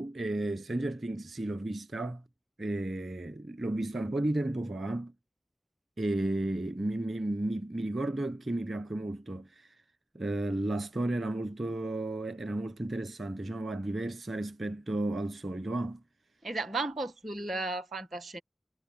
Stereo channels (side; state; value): both; normal; correlation 0.91